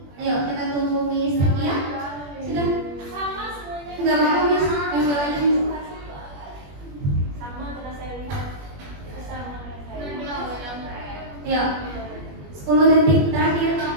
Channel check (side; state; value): left; late; 21 ms